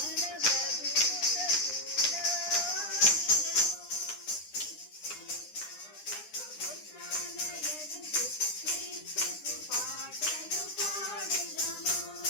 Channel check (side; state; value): right; late; 9.8 ms